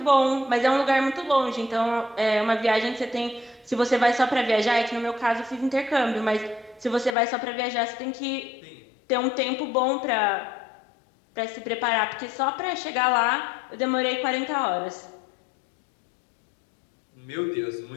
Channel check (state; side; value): drops out; right; at 7.2 s